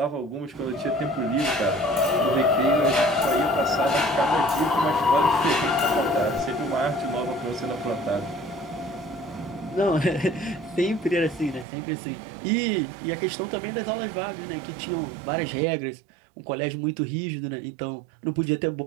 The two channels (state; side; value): drops out; left; at 11.7 s